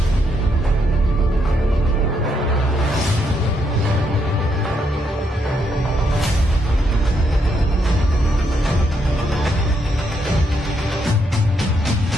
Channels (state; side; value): normal; both; correlation 0.76